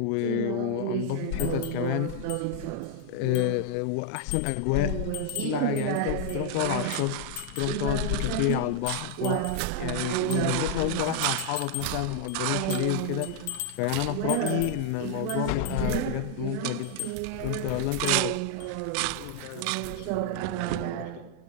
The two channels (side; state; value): both; different; correlation 0.00